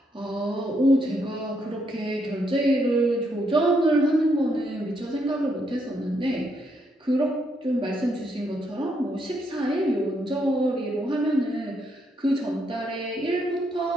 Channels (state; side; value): normal; both; correlation 0.76